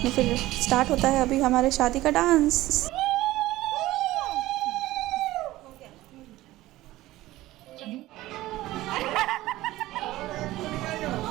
में फिर स्टार्ट होता है अभी हमारे शादी का डांस।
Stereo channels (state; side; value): quieter; left; 16.8 dB